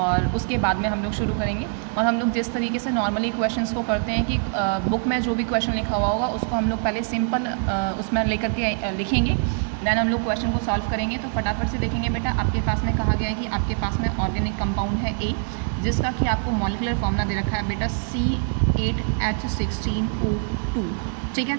उसके बाद में हम लोग शुरू करेंगे। और हम लोग जिस तरीके से नॉर्मली क्वेश्चंस को करते हैं कि बुक में जो भी क्वेश्चन लिखा हुआ होगा उसको हम लोग पहले सिंपल उसमें लेकर के लिखेंगे, देन हम लोग क्वेश्चन को सॉल्व करेंगे। तो फटाफट से देखेंगे। बेटा आपके पास में कहा गया है कि आपके पास में ऑर्गेनिक कंपाउंड है ए, जिसका कि आपको मॉलिक्यूलर फॉर्मूला दे रखा है बेटा C8H16O2। ठीक है,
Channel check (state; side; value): silent; left; 56 dB below the other